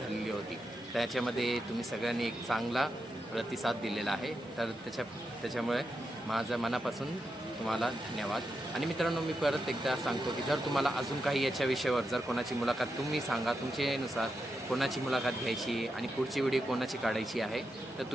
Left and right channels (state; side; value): normal; both; correlation 0.86